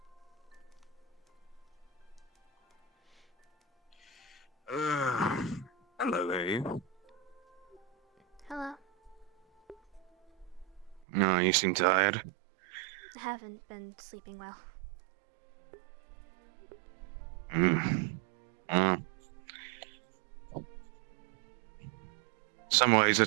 Hello there. Hello. No, you seem tired. I haven't been sleeping well. Some ways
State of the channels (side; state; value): left; drops out; at 11.1 s